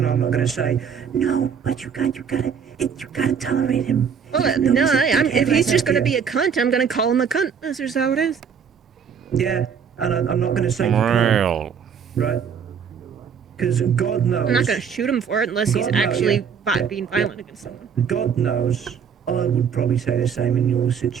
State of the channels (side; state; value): left; quieter; 7.0 dB